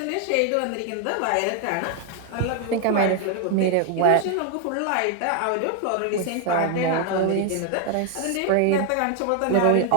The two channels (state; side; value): different; both; correlation 0.00